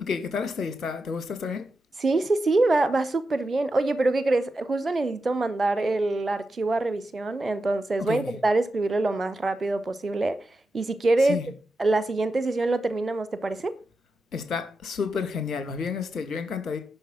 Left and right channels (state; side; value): normal; both; correlation 0.88